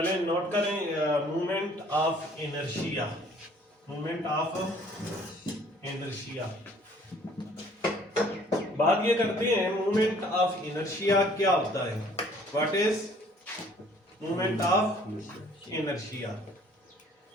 नोट करें movement of inertia. Movement of inertia, बात ये करते हैं मूवमेंट ऑफ इनर्शिया क्या होता है। What is movement of inertia.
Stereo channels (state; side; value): normal; both; correlation 0.57